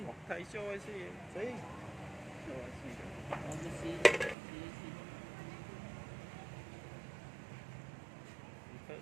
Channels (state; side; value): drops out; left; at 4.4 s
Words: Thầy cho ai xì. xì Cho ai xì. Xí. Thợ